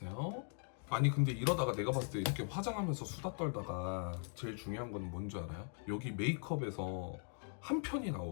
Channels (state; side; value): silent; right; 51 dB below the other